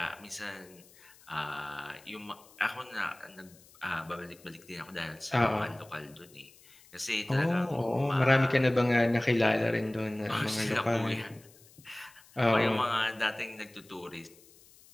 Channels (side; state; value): left; noise; hiss, 25 dB below the sound